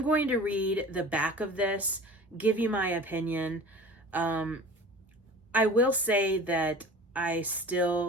going to read the back of this, give you my opinion. I will say that I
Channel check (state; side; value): normal; both; correlation 0.40